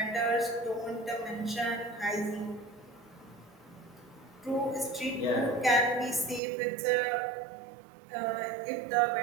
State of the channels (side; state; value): left; drops out; at 6.4 s